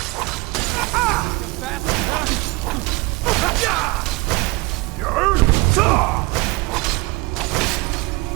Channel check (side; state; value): left; quieter; 24.0 dB